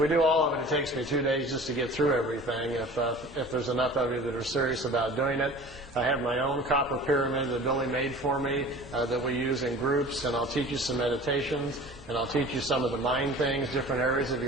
do all of it, it takes me 2 days just to get through everything, if there's enough of you that are serious about doing it. I have my own copper pyramid that Billy made for me that we use in groups, and I'll teach you some meditations, and I'll teach you some of the mind things, different areas of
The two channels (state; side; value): normal; both; correlation 0.42